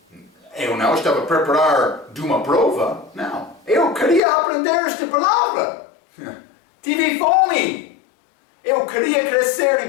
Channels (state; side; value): drops out; right; at 4.2 s